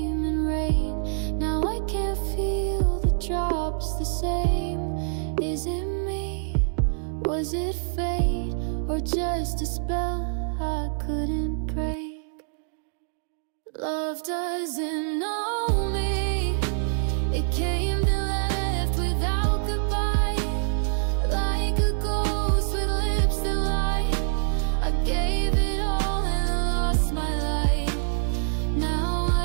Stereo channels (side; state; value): left; silent; digital silence